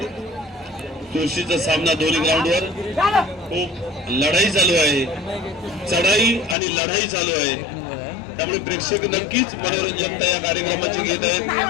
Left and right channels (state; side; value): drops out; right; at 6.6 s